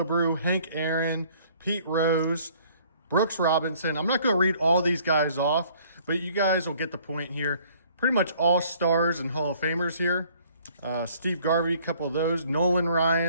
Hank Aaron, Pete Rose, Brooks Robinson. I'm not going to read all these guys off, but you guys will get the point here. Pretty much all stars and Hall of Famers here. Steve Garvey, a couple of those. Nolan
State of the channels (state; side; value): inverted; both; correlation -0.58